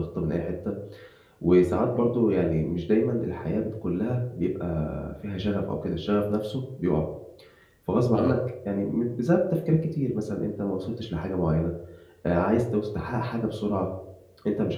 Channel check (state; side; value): identical; both; correlation 1.00